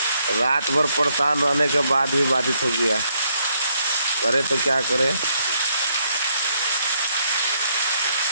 रात भर परेशान रहने के बाद भी बाधित हो गया। करे तो क्या करे।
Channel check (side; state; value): both; inverted; correlation -0.72